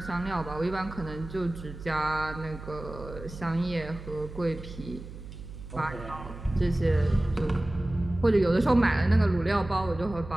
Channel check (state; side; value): noise; right; hum, 13 dB below the sound